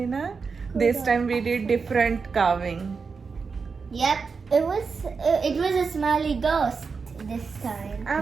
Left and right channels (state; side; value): quieter; left; 5.1 dB